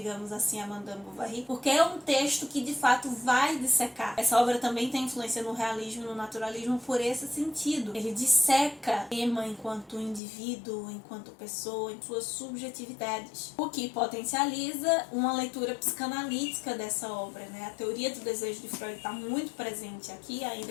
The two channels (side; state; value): right; drops out; at 10.2 s